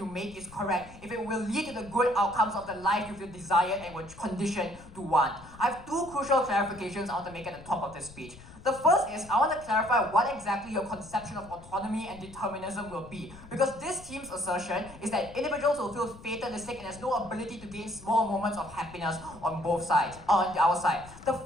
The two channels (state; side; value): noise; left; rumble, 19 dB below the sound